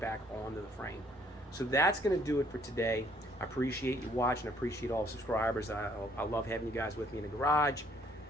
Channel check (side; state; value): both; normal; correlation 0.63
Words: onto the frame. So that's going to do it for today. I appreciate you watching. I appreciate all the subscribers. I love having you guys with me in the garage.